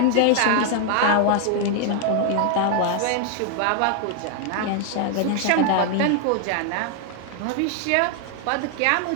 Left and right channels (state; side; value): different; both; correlation 0.00